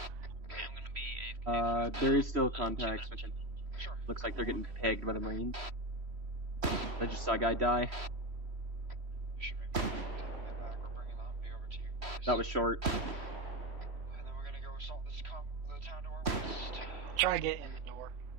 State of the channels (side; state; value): left; late; 3.1 ms